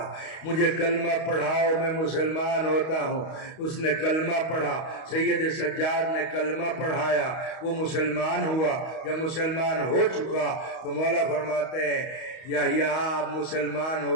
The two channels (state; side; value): late; right; 31 ms